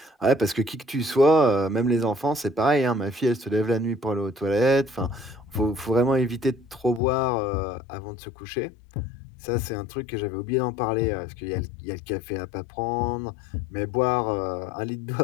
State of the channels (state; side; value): drops out; right; at 7.0 s